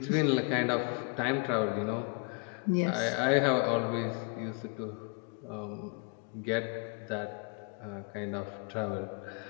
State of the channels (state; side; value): quieter; right; 35.6 dB